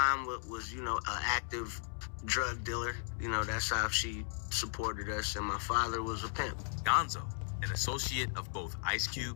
was, you know, an active drug dealer. You know, that's how she supported us. And my father was a pimp. Gonzo, an associate of both Ice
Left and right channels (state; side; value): silent; right; digital silence